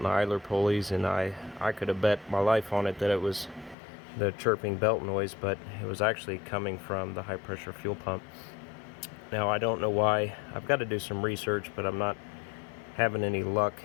idler pulleys, and I could have bet my life on it that it was the chirping belt noise, but it was actually coming from the high pressure fuel pump. Now I don't know why. I've got to do some research, but I'm not having any luck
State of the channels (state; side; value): drops out; right; at 3.8 s